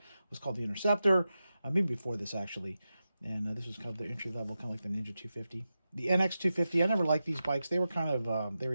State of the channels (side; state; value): both; inverted; correlation -0.92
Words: was called the Interceptor, maybe before this actually. And this was kind of the entry level, kind of like the Ninja 250. The NX 250, I never liked these bikes. They were kind of, they